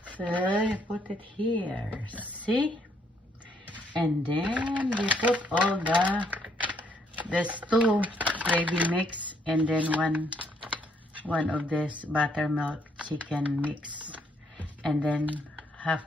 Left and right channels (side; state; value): both; normal; correlation 0.70